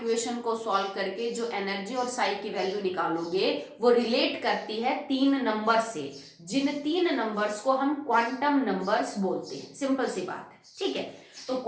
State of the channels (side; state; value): both; identical; correlation 1.00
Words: को सॉल्व करके जो एनर्जी और साई की वैल्यू निकालोगे वो रिलेट करती है 3 नंबर से, जिन 3 नंबर्स को हम क्वांटम नंबर्स बोलते हैं। सिंपल सी बात है, ठीक है। तो